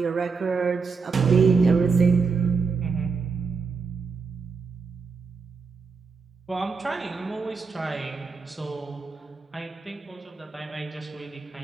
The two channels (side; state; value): left; quieter; 4.9 dB